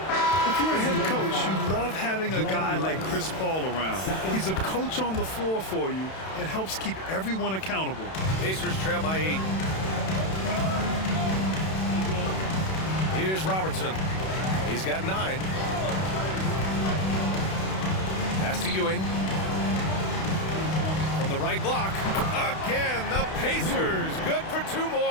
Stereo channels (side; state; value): right; late; 31 ms